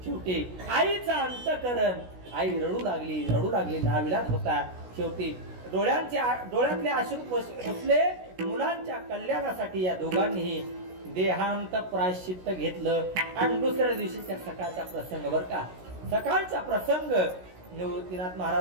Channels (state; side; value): late; left; 16 ms